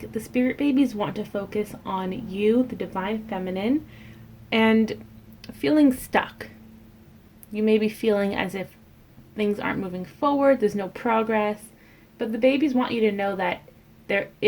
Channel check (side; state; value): both; identical; correlation 1.00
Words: the Spirit Babies want to focus on you, the Divine Feminine, and feeling stuck. You may be feeling as if things aren't moving forward, there's no progress, but the babies want you to know that there